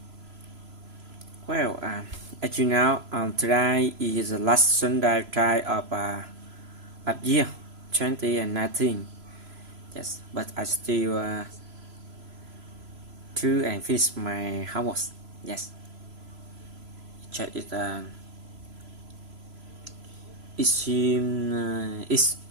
Well, as you know, today is the last Sunday of year 2019. Yes, but I still do and finish my homework. Yes, check it. It seems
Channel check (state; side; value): late; left; 3.0 ms